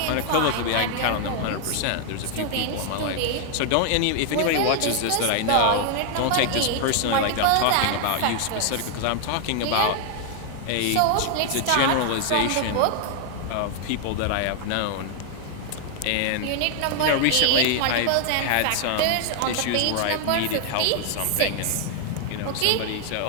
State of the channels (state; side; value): different; both; correlation 0.00